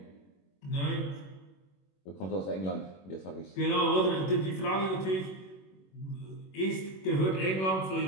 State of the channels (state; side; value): late; right; 21 ms